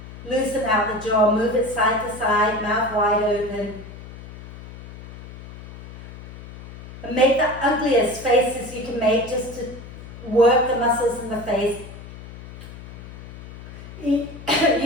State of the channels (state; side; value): noise; left; hum, 14 dB below the sound